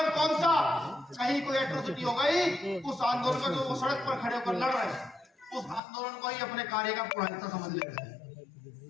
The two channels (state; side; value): drops out; right; at 5.8 s